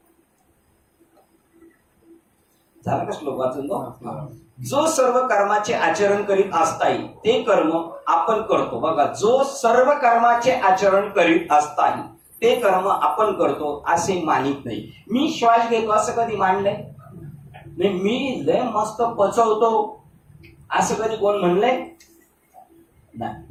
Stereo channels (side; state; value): both; identical; correlation 1.00